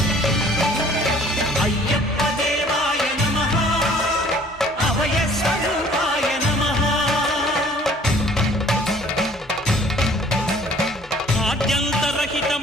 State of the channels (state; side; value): normal; both; correlation 0.54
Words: అయ్యప్ప దేవాయ నమః, అభయ స్వరూపాయ నమః.